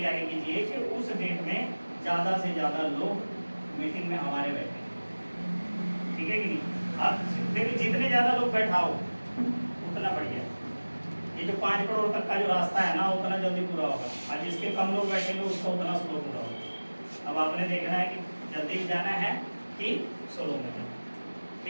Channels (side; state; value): both; inverted; correlation -1.00